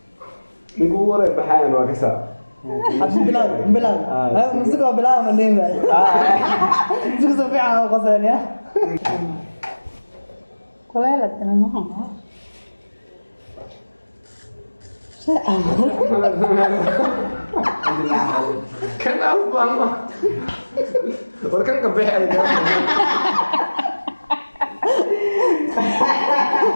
نقول ورا بحاين وكسا بلال مسكوا بلال من دين بقى تكسب فيها وقصرين يا كلها تمام كان أفضل وكان كبيح على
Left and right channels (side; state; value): both; inverted; correlation -1.00